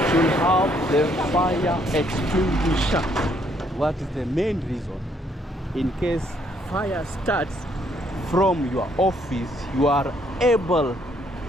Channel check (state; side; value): normal; both; correlation 0.69